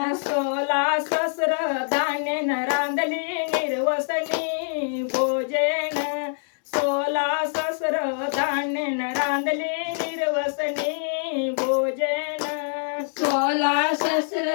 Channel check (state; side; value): silent; right; digital silence